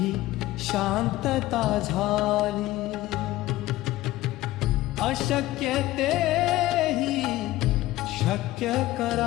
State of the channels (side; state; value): right; quieter; 16.7 dB